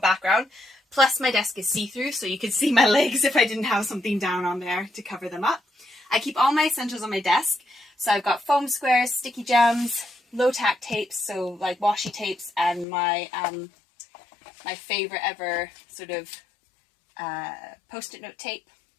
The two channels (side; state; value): right; drops out; at 12.9 s